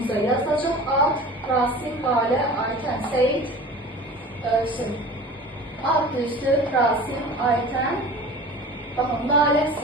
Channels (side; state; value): both; normal; correlation 0.39